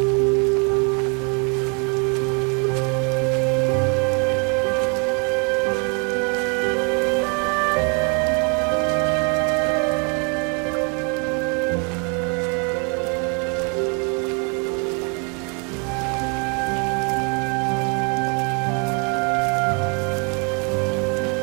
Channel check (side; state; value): left; quieter; 35.9 dB